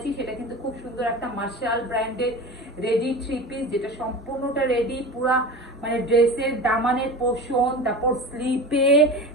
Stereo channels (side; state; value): both; normal; correlation 0.32